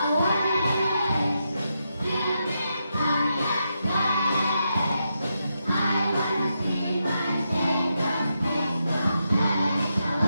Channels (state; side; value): inverted; both; correlation -0.84